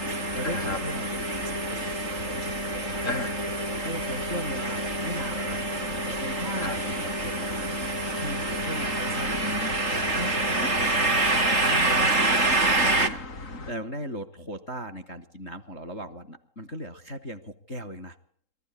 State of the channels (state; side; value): late; right; 3.8 ms